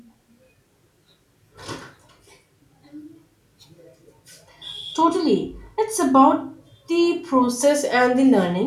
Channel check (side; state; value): both; identical; correlation 1.00